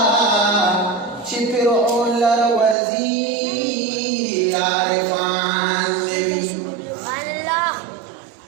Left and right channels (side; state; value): left; drops out; at 2.8 s